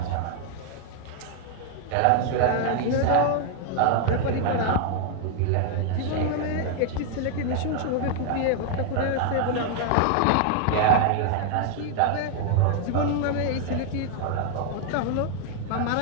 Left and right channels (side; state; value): both; different; correlation 0.00